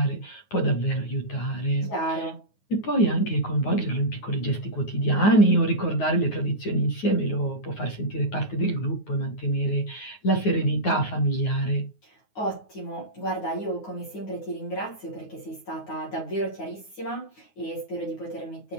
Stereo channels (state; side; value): late; right; 9.5 ms